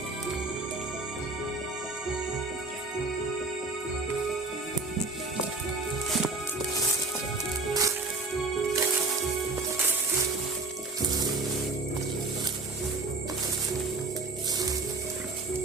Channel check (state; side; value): quieter; left; 3.5 dB